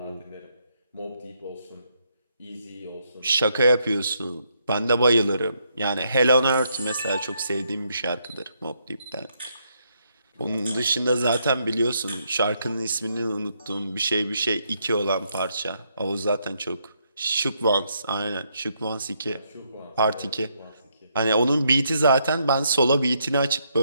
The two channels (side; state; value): both; inverted; correlation -0.76